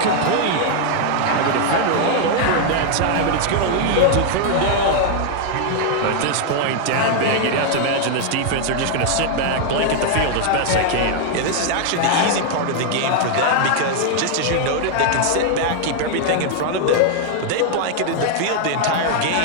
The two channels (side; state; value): both; different; correlation 0.00